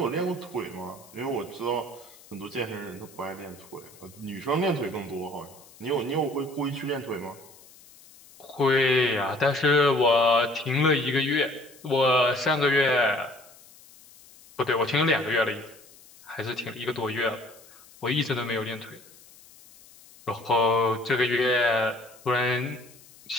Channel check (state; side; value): noise; left; hiss, 24 dB below the sound